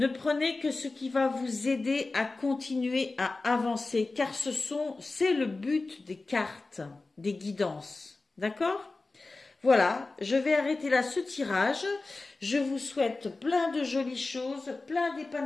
prenez que ce qui va vous aider à continuer à avancer, car c'est le but des cartes, des guidances. D'accord? Voilà, je vais arrêter là ce tirage. Je vous souhaite plein de jolies choses, plein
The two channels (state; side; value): quieter; right; 3.4 dB